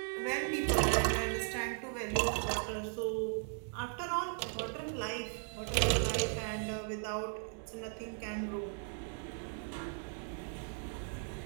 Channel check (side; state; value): left; silent; 53 dB below the other